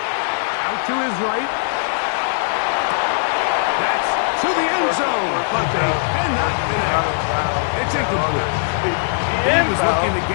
Out to his right. That's to the end zone, but they cannot connect. It's incomplete. He was looking to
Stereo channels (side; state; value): right; silent; digital silence